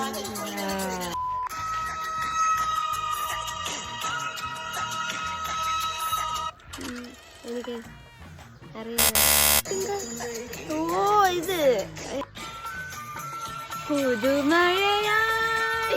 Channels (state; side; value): identical; both; correlation 1.00